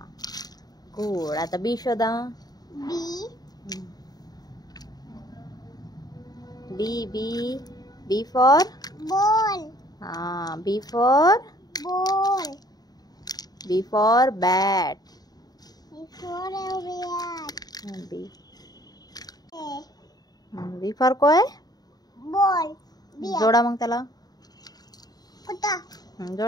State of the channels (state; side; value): late; right; 0.19 ms